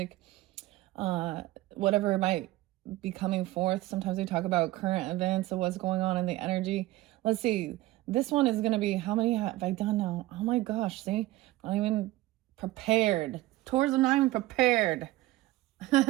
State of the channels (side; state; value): left; quieter; 17.5 dB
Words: uh, whatever might be coming forth. Sometimes we talk about current events of what's going on in the energy. Let's see. This one is going to be how many have I done now? Oh my gosh, see? I'm not even prepared. Taurus, I'm not even prepared.